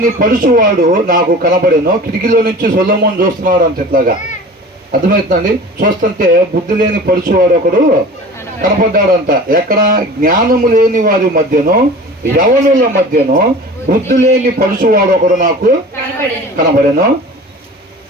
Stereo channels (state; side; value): normal; both; correlation 0.39